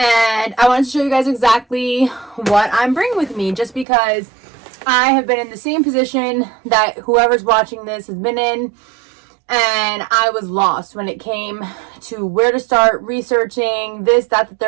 I wanted to show you guys exactly what I'm bringing with me, just because I have been in the same position that whoever's watching this has been in. And I was lost when it came to where to start researching this, that, the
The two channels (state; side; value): drops out; left; at 3.9 s